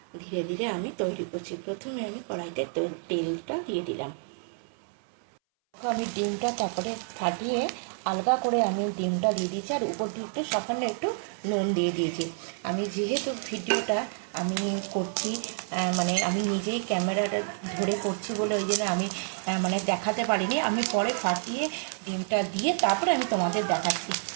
ধীরে ধীরে আমি তৈরি করছি। প্রথমে আমি কড়াইতে তেলটা দিয়ে দিলাম। আমি ডিমটা তারপরে ফাটিয়ে আলগা করে আমি ডিমটা দিয়ে দিয়েছি, আর উপর দিয়ে একটু সামান্য একটু নুন দিয়ে দিয়েছি। আমি যেহেতু ভিডিওটা আমি করছি, মানে আমি নিজেই ক্যামেরাটা ধরে করছি বলে ওই জন্য আমি মানে দেখাতে পারিনি। আমি পরে ফাটিয়ে ডিমটা দিয়ে তারপরে আমি তোমাদের দেখাচ্ছি।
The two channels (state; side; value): silent; left; 59 dB below the other